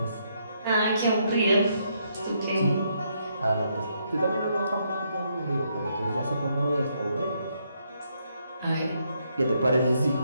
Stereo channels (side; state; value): both; inverted; correlation -0.75